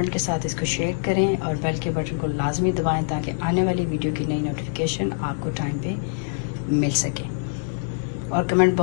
के साथ इसको शेयर करें और बेल के बटन को लाजमी दबाएं ताकि आने वाली वीडियो की नई नोटिफिकेशन आपको टाइम पे मिल सके। और कमेंट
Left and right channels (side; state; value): right; silent; digital silence